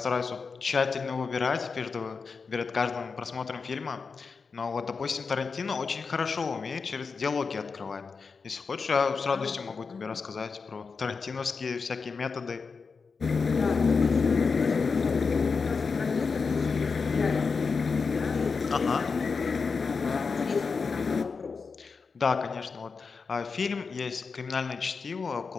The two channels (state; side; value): quieter; right; 5.0 dB